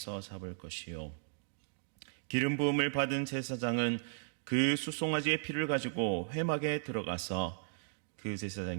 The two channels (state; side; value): silent; left; digital silence